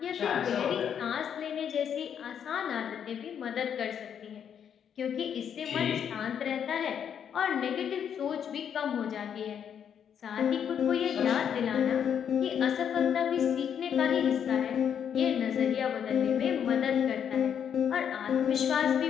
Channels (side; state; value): right; quieter; 8.4 dB